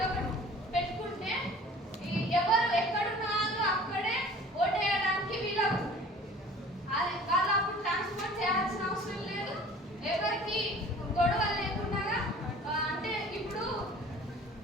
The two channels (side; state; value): both; normal; correlation 0.46